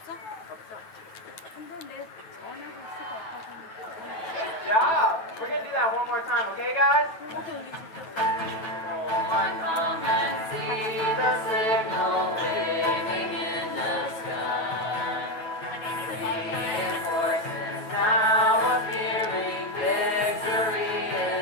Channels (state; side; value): late; right; 9.2 ms